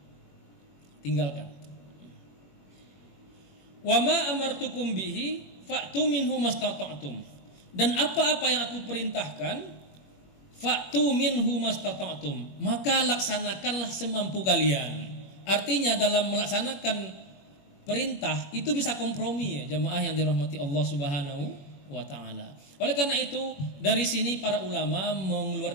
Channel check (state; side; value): late; right; 21 ms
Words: tinggalkan. Wa ma amartukum bihi fa'tu minhu mastata'tum. Dan apa-apa yang aku perintahkan, fa'tu minhu mastata'tum, maka laksanakanlah semampu kalian. Artinya dalam melaksanakan perintah itu bisa kompromi, ya jamaah yang dirahmati Allah Subhanahu wa taala. Oleh karena itu dari sini para ulama